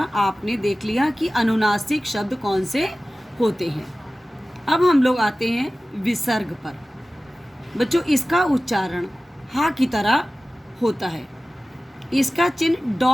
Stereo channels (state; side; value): normal; both; correlation 0.96